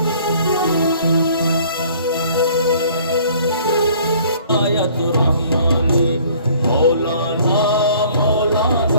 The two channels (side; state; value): both; inverted; correlation -0.55